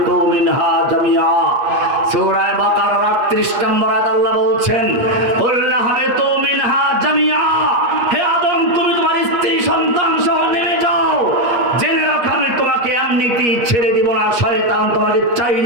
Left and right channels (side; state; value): left; late; 8.5 ms